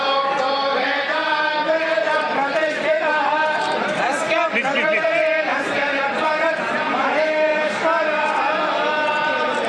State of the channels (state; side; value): identical; both; correlation 1.00